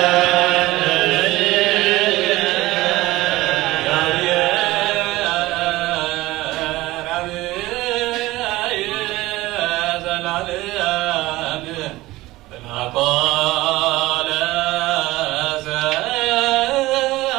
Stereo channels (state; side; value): quieter; left; 18.4 dB